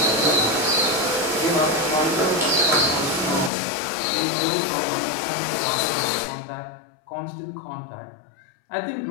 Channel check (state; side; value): drops out; right; at 3.5 s